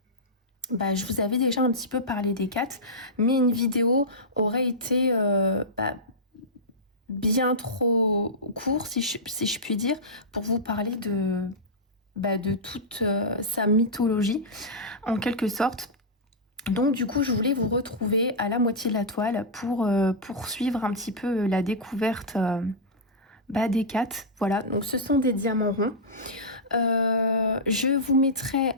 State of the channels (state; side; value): normal; both; correlation -0.10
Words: je vous avais déjà un petit peu parlé des 4, mais une vidéo aurait été bien trop courte, si je puis dire, pour vous parler de toute sa mythologie, en quelque sorte. Donc du coup, je voulais vous retrouver à la moitié de la toile pour poursuivre un petit peu la découverte des 4. Voilà, donc ce sont des diamants ronds. Je vous mettrai